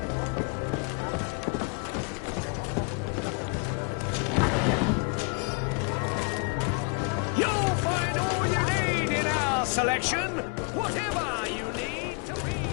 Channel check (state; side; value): quieter; right; 33.7 dB